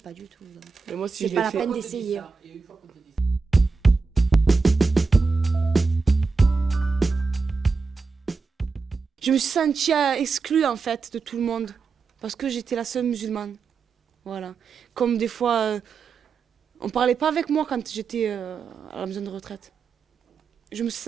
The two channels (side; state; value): left; quieter; 4.7 dB